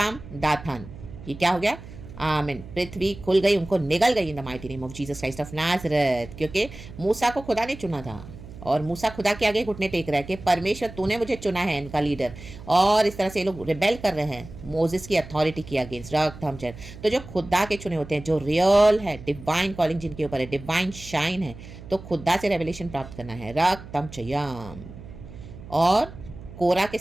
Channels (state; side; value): noise; right; hum, 15 dB below the sound